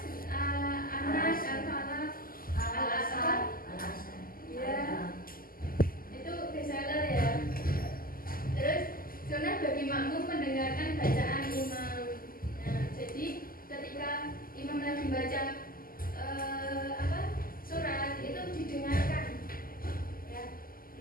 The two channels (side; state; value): right; late; 0.42 ms